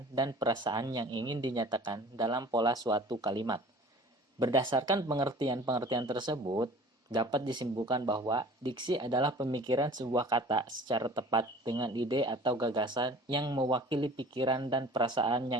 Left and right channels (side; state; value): both; normal; correlation 0.45